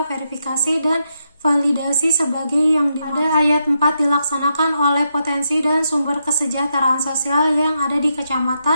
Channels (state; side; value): inverted; both; correlation -0.81